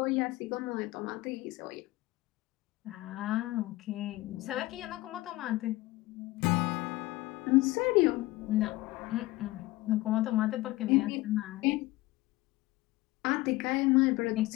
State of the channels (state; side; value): quieter; right; 19.0 dB